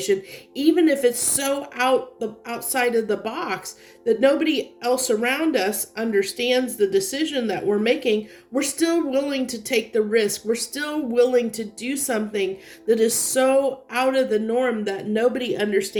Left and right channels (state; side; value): identical; both; correlation 1.00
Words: even if it's so outside of the box that nobody else around us understands the decision that we're making, we're still willing to take the risk. We're still willing to do something that is so out of the norm that nobody